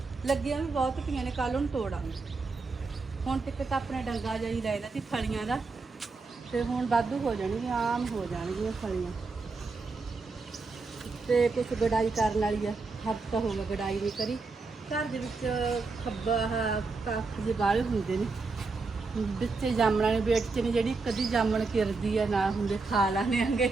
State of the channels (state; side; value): quieter; left; 4.0 dB